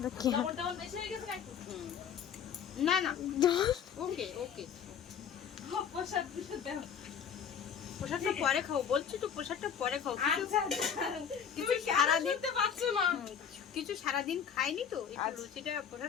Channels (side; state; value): right; quieter; 7.8 dB